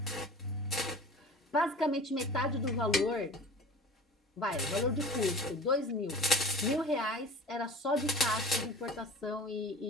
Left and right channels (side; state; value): both; normal; correlation 0.41